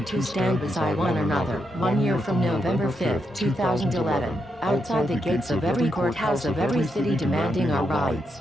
to stand beside one another, 1 year from November 5th, 2011, outside the gates of every courthouse of every city demanding our rights.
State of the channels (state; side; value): normal; both; correlation 0.82